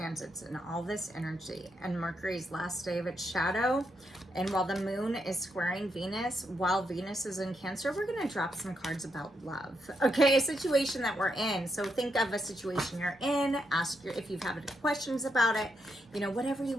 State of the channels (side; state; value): both; normal; correlation 0.81